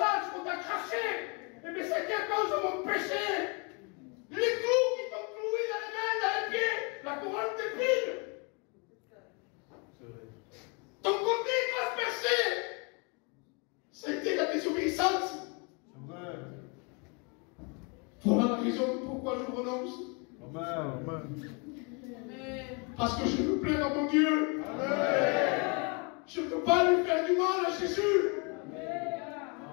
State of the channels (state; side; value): quieter; right; 33.2 dB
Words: qu'on t'a craché, eh bien c'est à cause de mon péché. Les clous qui t'ont cloué dans les mains, dans les pieds, la couronne d'épines. Ton côté transpercé, c'était la désobéissance. Voilà la raison pourquoi je renonce. Amen. Parce que je veux plaire à mon Dieu. Amen. Je ne peux pas lui faire du mal à Jésus.